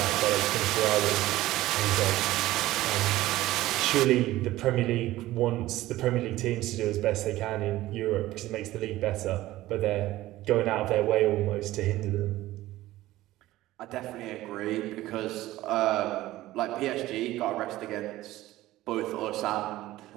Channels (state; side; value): quieter; left; 16.2 dB